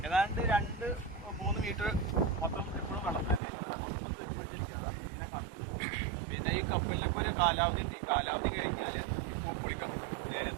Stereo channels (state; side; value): drops out; left; at 3.4 s